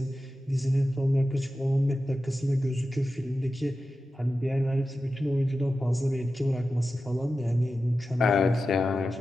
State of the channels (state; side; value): normal; both; correlation 0.92